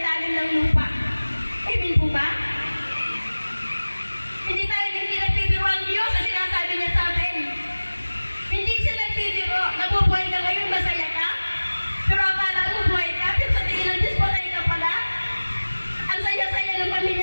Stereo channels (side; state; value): both; inverted; correlation -1.00